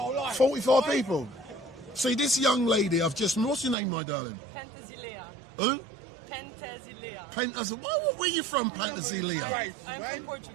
life. 44 people. See, this young lady, what's your name, my darling? Pentazilea. Who? Pentazilea. Where are you from, Pentazilea? I'm from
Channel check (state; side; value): drops out; left; at 3.8 s